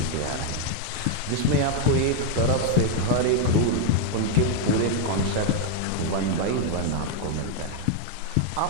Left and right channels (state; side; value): different; both; correlation 0.00